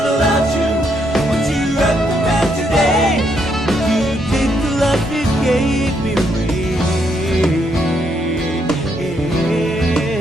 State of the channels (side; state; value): both; normal; correlation 0.75